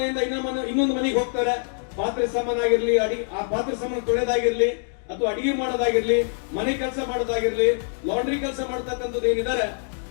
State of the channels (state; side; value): silent; right; 59 dB below the other